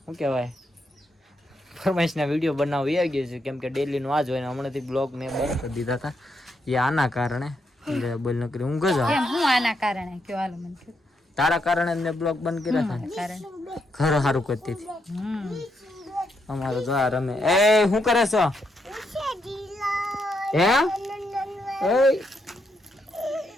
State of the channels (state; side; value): normal; both; correlation 0.79